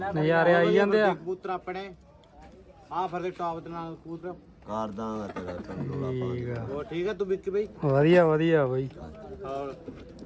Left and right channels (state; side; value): identical; both; correlation 1.00